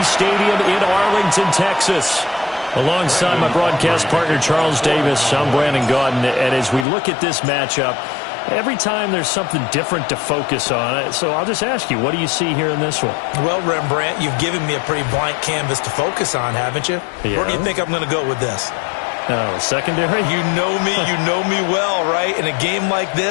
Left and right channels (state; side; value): drops out; right; at 6.9 s